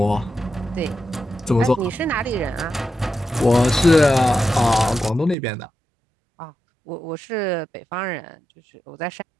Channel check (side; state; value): left; drops out; at 5.4 s